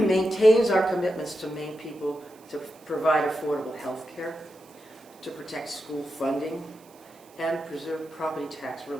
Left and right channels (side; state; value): right; noise; hiss, 27 dB below the sound